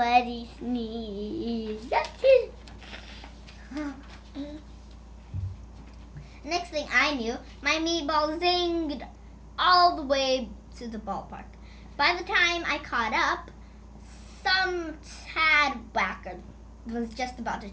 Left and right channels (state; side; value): identical; both; correlation 1.00